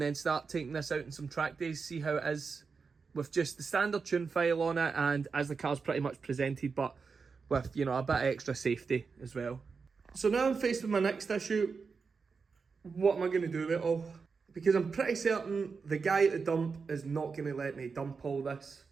start taking this out in some track days, see how it is with just the standard tune file on it, and as the car's pretty much presented, but with, you know, a bit of extra safety as well. So now I'm faced with my next issue. What am I going to do with it all? Because I'm pretty certain the guy at the dump is not going to let me dump all this.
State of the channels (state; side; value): quieter; left; 5.1 dB